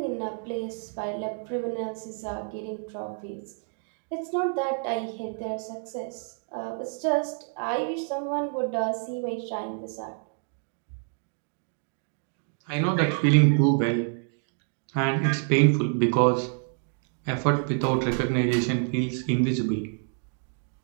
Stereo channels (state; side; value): silent; left; 56 dB below the other